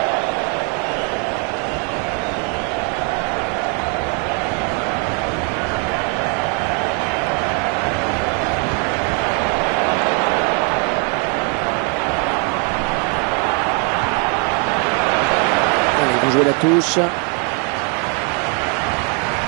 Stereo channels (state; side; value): quieter; left; 36.7 dB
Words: Allez, vous jouez la touche.